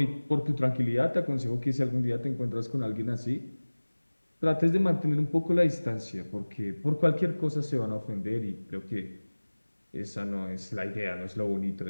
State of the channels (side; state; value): both; inverted; correlation -1.00